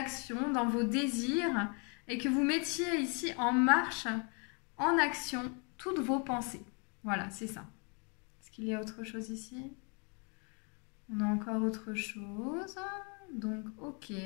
dans vos désirs, et que vous mettiez ici en marche, en action, toutes vos pensées. Voilà, c'est ça. Est-ce qu'il y a autre chose ici? On a encore autre chose. Donc, ok.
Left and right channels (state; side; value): quieter; right; 35.3 dB